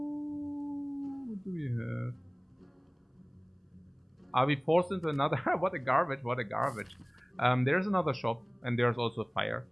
what do we have? Are we forced into another? What a garbage, what a garbage. There's another shop, and there's also Fire.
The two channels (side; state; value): both; identical; correlation 1.00